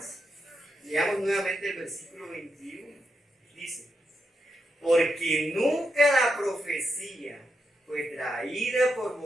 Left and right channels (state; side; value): normal; both; correlation 0.84